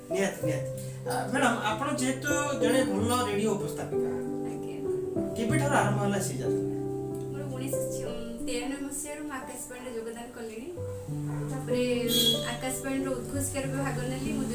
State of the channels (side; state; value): both; identical; correlation 1.00